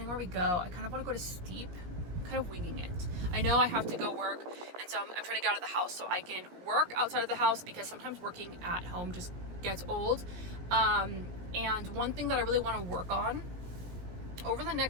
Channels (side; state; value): left; late; 17 ms